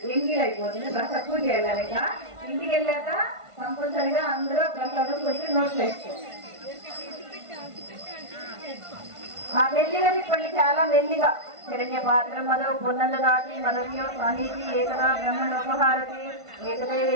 ఎంగిల్ అయిపోతుంది. ప్రసాదం పూజ చేయాలి. ఇంటికి వెళ్ళాక కంపల్సరిగా అందరూ ప్రసాదం కొంచెం నోట్లు వేసుకోండి. మెల్లిగా తిప్పండి, చాలా మెల్లిగా. హిరణ్య పాత్రం మదో పునర్దాతి మదవ్యో సాహితి ఏకదా బ్రహ్మణోపహారతి ఏకదే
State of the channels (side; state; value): left; late; 1.5 ms